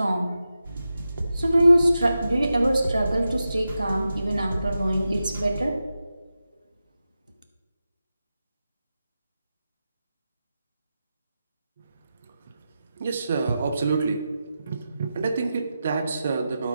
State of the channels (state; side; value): inverted; both; correlation -0.91